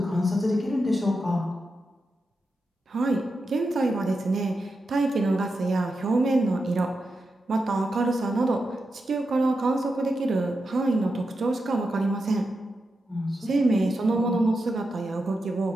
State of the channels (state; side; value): normal; both; correlation 0.88